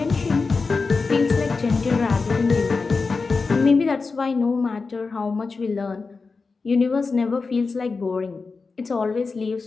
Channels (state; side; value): quieter; right; 4.3 dB